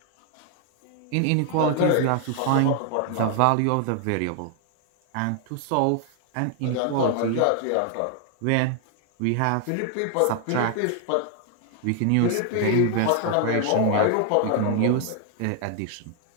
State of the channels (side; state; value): both; different; correlation 0.00